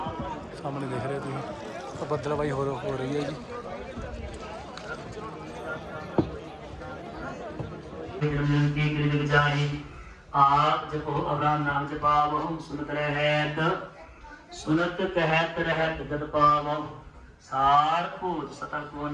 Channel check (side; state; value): both; identical; correlation 1.00